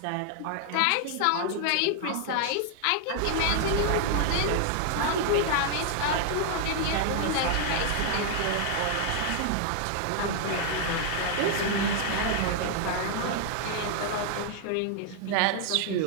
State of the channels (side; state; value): both; different; correlation 0.00